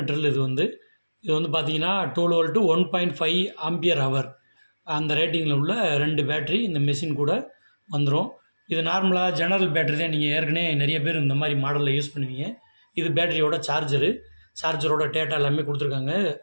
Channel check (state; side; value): inverted; both; correlation -1.00